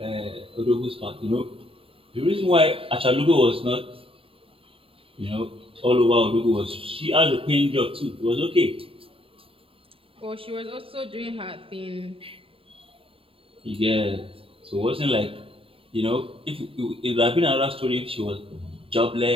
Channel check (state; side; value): late; left; 0.27 ms